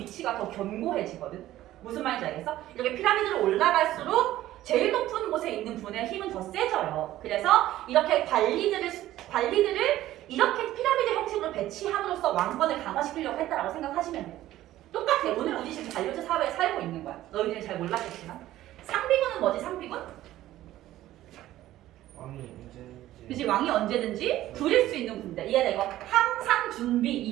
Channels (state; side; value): quieter; left; 14.5 dB